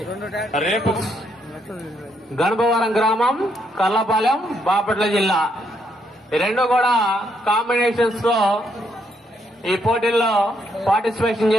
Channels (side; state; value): both; normal; correlation 0.75